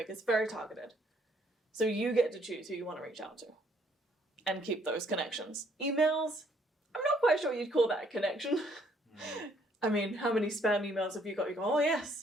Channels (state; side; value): normal; both; correlation 0.66